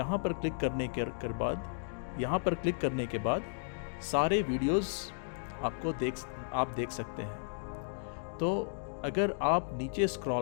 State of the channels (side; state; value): right; silent; digital silence